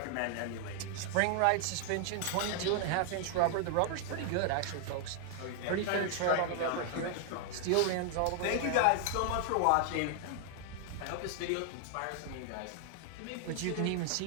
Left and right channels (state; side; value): different; both; correlation 0.00